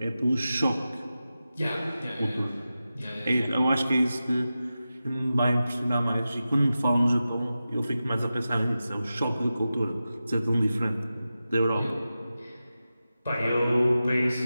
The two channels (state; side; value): inverted; both; correlation -0.93